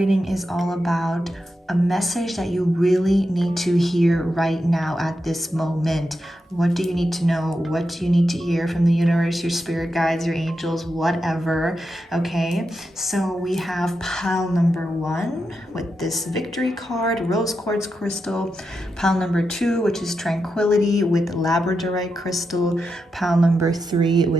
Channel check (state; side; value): normal; both; correlation 0.87